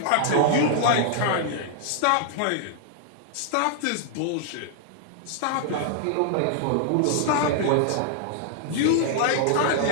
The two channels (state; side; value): different; both; correlation -0.01